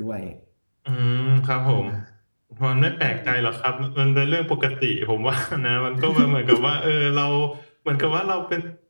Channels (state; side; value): inverted; both; correlation -1.00